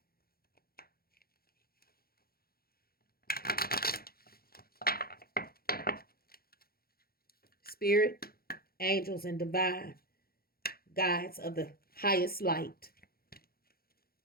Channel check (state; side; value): late; right; 0.44 ms